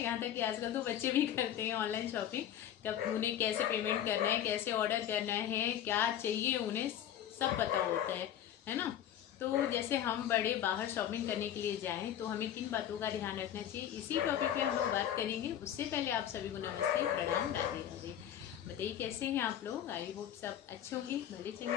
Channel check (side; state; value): right; quieter; 10.6 dB